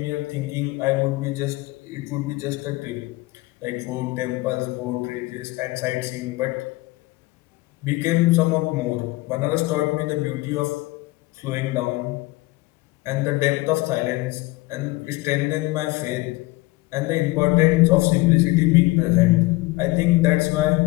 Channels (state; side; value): quieter; right; 21.2 dB